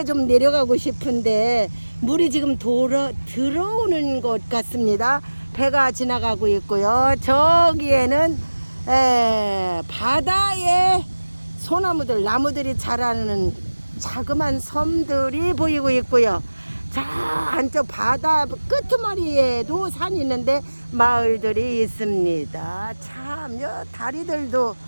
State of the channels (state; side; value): inverted; both; correlation -1.00